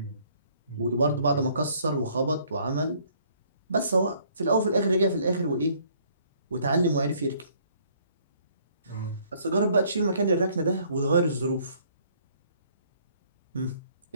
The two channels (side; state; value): both; inverted; correlation -0.62